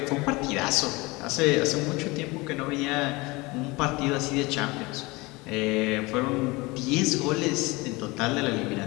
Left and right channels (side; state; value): right; quieter; 23.7 dB